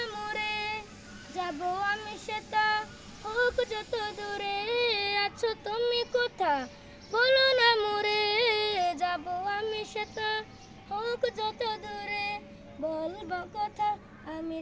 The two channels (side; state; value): both; identical; correlation 1.00